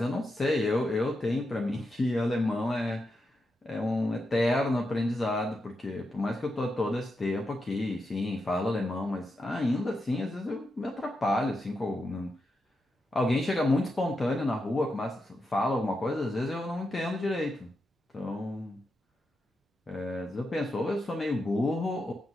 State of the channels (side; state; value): both; normal; correlation 0.86